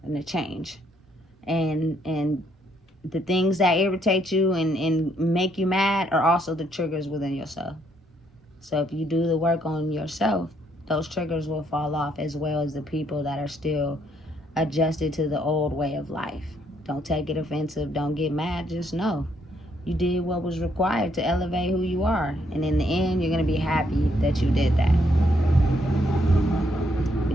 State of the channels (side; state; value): both; normal; correlation 0.71